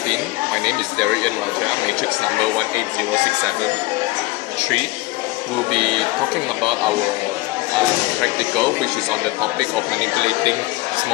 My name is Darian Raja, matrix number 180673. We'll be talking about our practical, which is on the topic of manipulating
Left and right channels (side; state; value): right; quieter; 21.0 dB